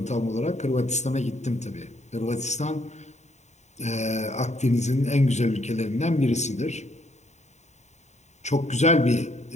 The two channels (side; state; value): right; late; 0.33 ms